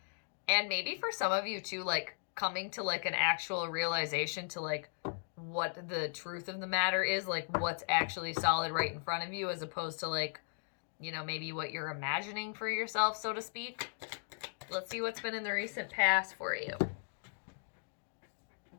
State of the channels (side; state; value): right; silent; digital silence